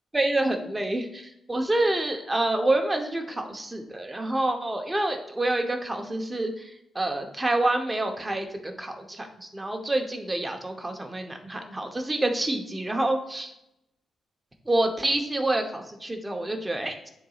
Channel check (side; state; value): both; normal; correlation 0.95